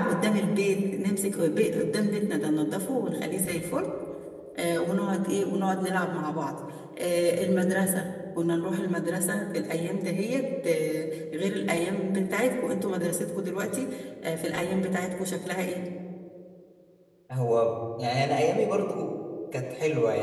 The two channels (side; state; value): both; identical; correlation 1.00